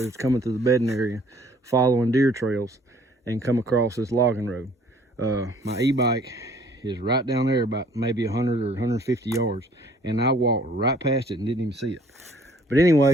was coming through the bedding area, following deer trails, and come across this logging road. My e-bike is right down there about maybe 100 or 150 yards, and I walked right past it and didn't even see it. But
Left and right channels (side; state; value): both; normal; correlation 0.58